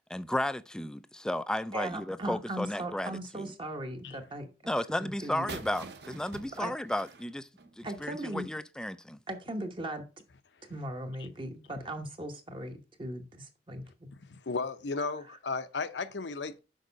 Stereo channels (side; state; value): both; normal; correlation 0.66